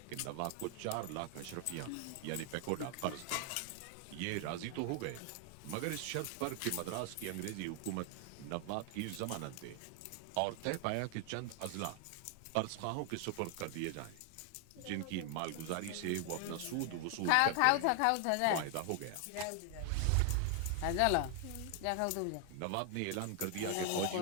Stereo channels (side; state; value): both; different; correlation 0.00